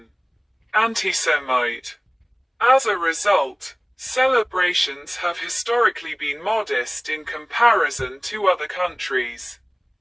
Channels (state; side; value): identical; both; correlation 1.00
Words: anti-Semite. As a result, celebrations have historically been modest in comparison to other countries.